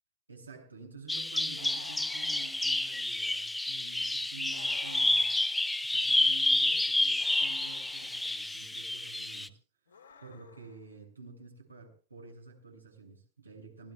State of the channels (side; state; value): both; normal; correlation 0.96